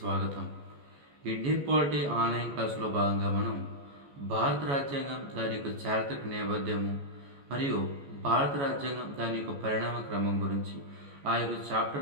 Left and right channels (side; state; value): left; late; 14 ms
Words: ఇండియన్ పాలిటీ ఆన్లైన్ క్లాసులో భాగంగా మనం భారత రాజ్యాంగం దాని యొక్క చారిత్రక నేపథ్యము మరియు భారత రాజ్యాంగం దాని యొక్క పరిణామ క్రమం గురించి ఆ యొక్క